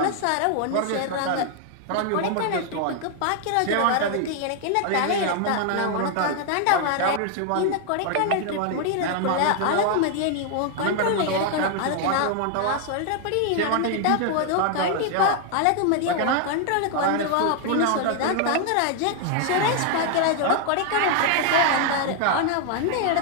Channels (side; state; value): both; different; correlation 0.00